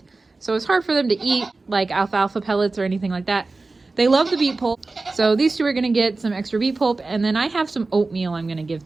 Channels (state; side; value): quieter; left; 3.5 dB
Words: so it's hard for them to eat like alfalfa pellets or anything like that. They love the beet pulp, so these two are gonna get some extra beet pulp, and then I have some oatmeal I'm gonna give